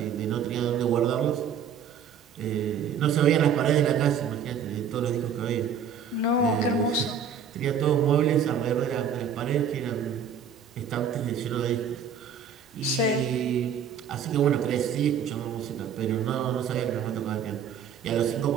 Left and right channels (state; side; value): quieter; left; 7.2 dB